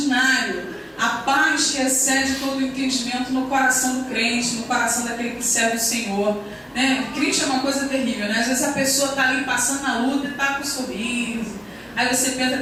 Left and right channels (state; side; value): identical; both; correlation 1.00